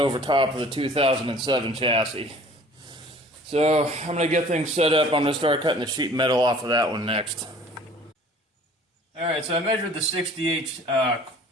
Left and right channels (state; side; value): normal; both; correlation 0.50